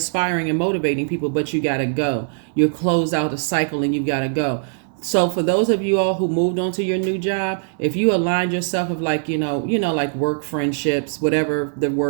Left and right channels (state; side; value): silent; left; 65 dB below the other